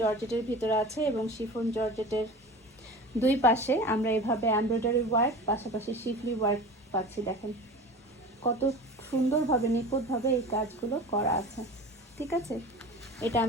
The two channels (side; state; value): both; normal; correlation 0.35